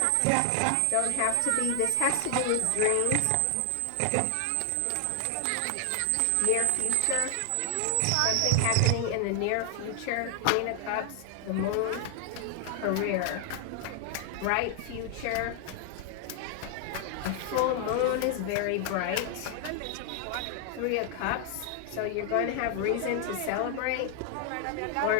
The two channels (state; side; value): different; both; correlation 0.00